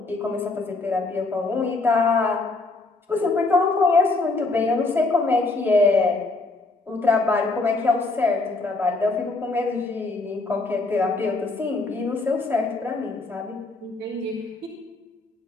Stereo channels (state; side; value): quieter; right; 3.4 dB